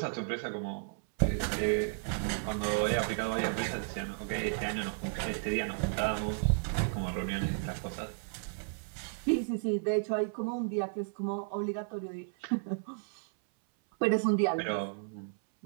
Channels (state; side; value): silent; left; 56 dB below the other